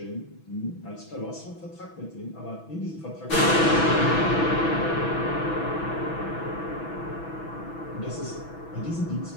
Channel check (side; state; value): right; late; 6.1 ms